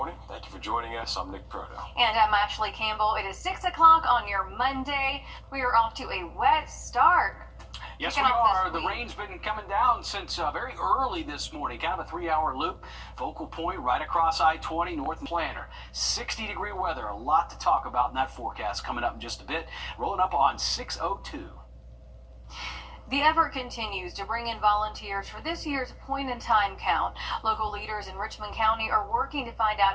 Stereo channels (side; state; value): both; identical; correlation 1.00